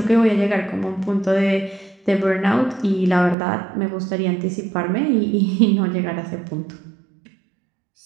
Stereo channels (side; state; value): left; drops out; at 3.4 s